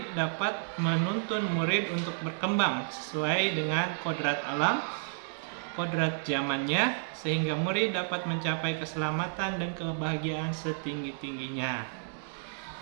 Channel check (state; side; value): silent; left; 57 dB below the other